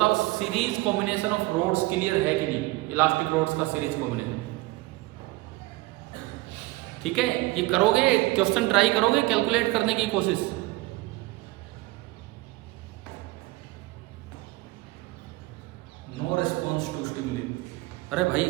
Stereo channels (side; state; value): left; quieter; 20.8 dB